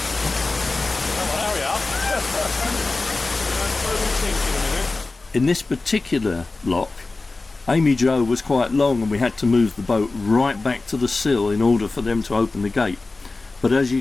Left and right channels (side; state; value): right; quieter; 3.5 dB